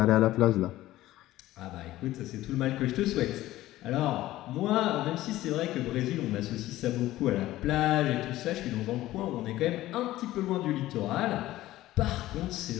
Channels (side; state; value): right; quieter; 15.7 dB